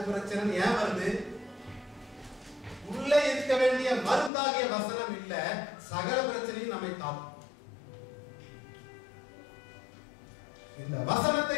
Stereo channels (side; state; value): right; drops out; at 4.3 s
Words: பிரச்சனை ஏன் வருது? உள்ளே இருக்க வேண்டிய மருந்தாகிய வசனம் இல்ல, சகல பிரச்சனையும் நம்மை தாக்கும். இந்த வசனத்தை